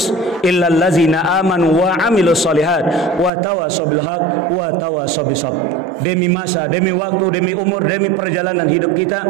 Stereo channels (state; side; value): drops out; left; at 3.3 s